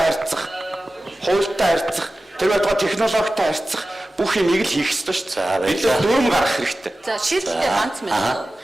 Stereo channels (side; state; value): both; normal; correlation 0.95